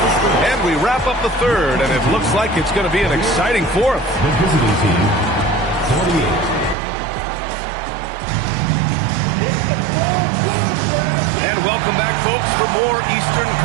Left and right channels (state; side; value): drops out; left; at 6.8 s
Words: And we wrap up the third, and it looks like it's going to be an exciting fourth. The visiting team, 48. And welcome back, folks, for more Eastern